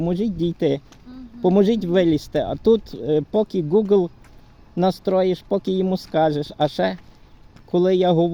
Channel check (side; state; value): both; identical; correlation 1.00